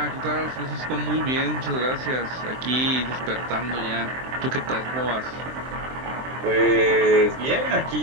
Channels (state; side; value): late; left; 23 ms